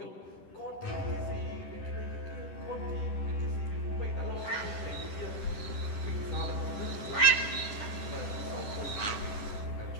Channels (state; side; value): late; right; 10 ms